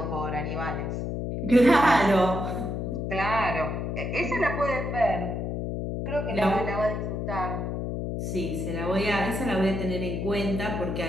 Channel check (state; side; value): noise; left; hum, 3 dB below the sound